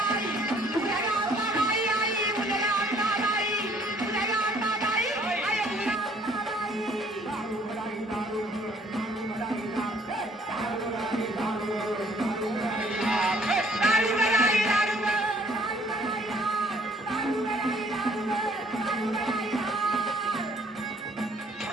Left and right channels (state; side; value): normal; both; correlation 0.60